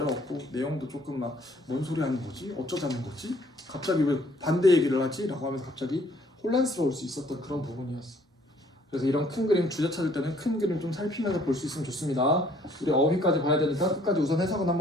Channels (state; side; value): normal; both; correlation 0.61